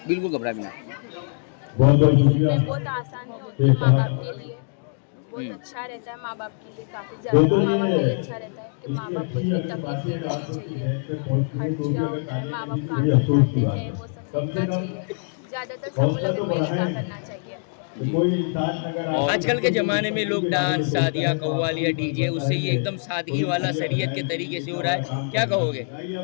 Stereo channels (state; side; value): silent; right; digital silence